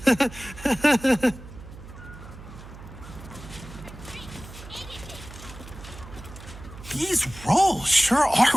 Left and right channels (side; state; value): right; noise; hum, 15 dB below the sound